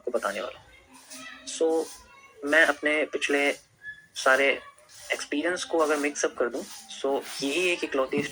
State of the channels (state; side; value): identical; both; correlation 1.00